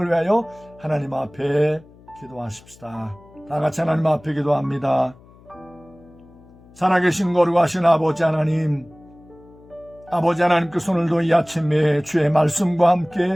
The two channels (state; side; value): noise; left; hum, 25 dB below the sound